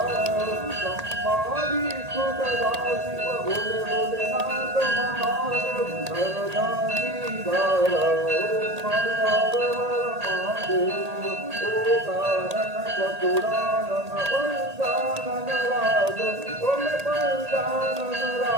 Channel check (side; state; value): left; late; 1.8 ms